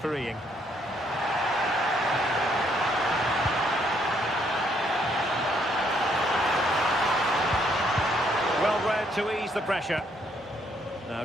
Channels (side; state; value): both; normal; correlation 0.70